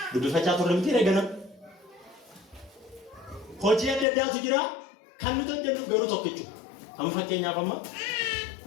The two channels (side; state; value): right; drops out; at 4.0 s